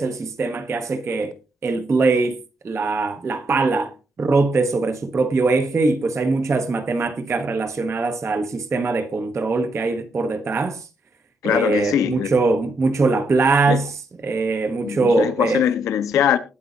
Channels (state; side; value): normal; both; correlation 0.77